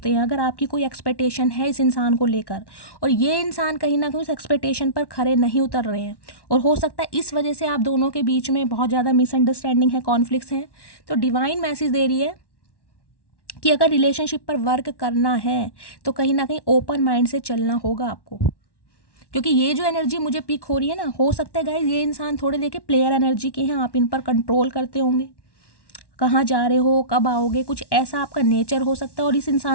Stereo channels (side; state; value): right; late; 1.1 ms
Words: हैं। अगर आपकी कोई एक्सपेक्टेशन है इस इंसान को लेकर और ये इंसान कहीं ना कहीं उस एक्सपेक्टेशन पर खरे नहीं उतर रहे हैं, और हो सकता है इस वजह से आप दोनों के बीच में बहुत ज़्यादा मिसअंडरस्टैंडिंग है, कॉन्फ्लिक्ट्स हैं, तो डिवाइन मैसेज दे रही है कि अगर रिलेशनशिप पर वर्क करना है तो कहीं ना कहीं ओपन माइंड से चलना होगा आपको। क्योंकि ये जो एनर्जी मुझे पिक हो रही है ना, हो सकता है गाइज ये इंसान थोड़े देखिए प्लेयर एनर्जी के हैं, आप इन पर कंट्रोल करते होंगे, कहाँ जा रहे हो, कब आओगे, कुछ ऐसा आपका नेचर हो सकता है, और इस